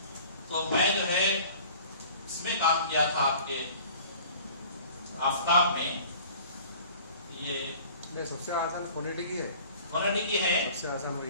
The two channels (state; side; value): inverted; both; correlation -0.47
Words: तो मैं जो है इसमें काम किया था आपके आफ्ताब में। ये सबसे आसान फोनेटिक ही है, फोनेटिक ही है, सबसे आसान वही